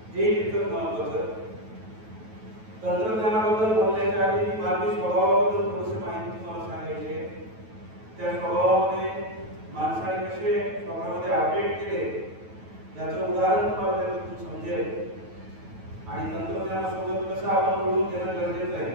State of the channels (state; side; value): late; left; 9.2 ms